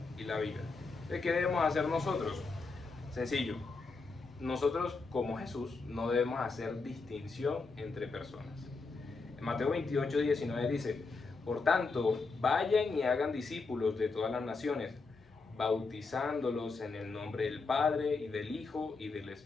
y la vida. Entonces, ¿qué debemos hacer nosotros? Sencillo. Nosotros, como Jesús, no debemos hacer distinción entre personas. En Mateo 28, 19 dice: por tanto, vayan y hagan discípulos de todas las naciones, bautizándolos en el nombre del Padre, y del Hijo, y del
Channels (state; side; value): quieter; right; 4.1 dB